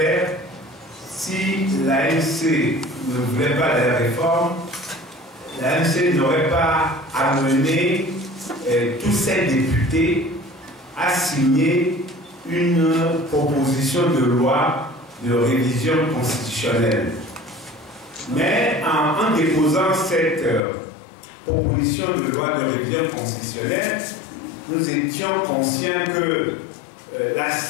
Si l'ANC ne voulait pas des réformes, l'ANC n'aurait pas amené tous ses députés à signer une proposition de loi de révision constitutionnelle. Mais en déposant cette proposition de loi de révision constitutionnelle, nous étions conscients que la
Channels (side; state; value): right; drops out; at 20.6 s